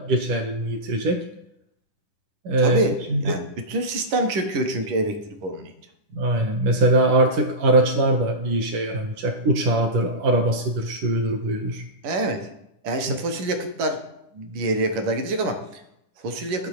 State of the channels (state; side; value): late; left; 10 ms